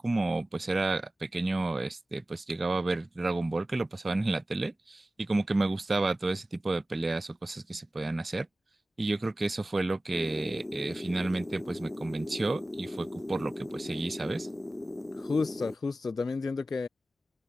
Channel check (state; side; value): normal; both; correlation 0.96